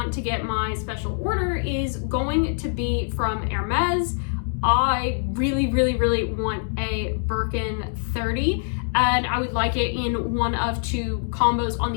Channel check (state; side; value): silent; right; 59 dB below the other